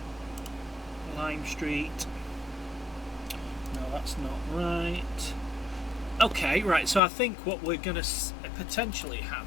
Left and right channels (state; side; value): drops out; right; at 7.0 s